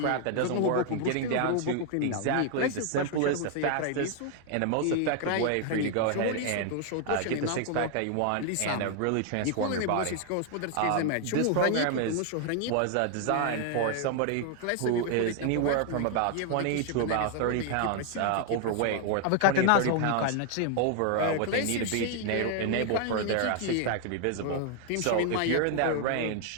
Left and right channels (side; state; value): both; different; correlation 0.00